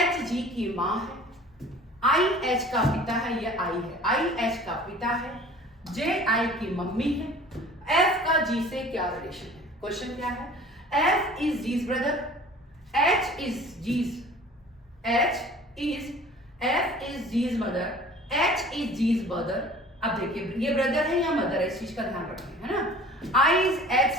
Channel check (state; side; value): normal; both; correlation 0.46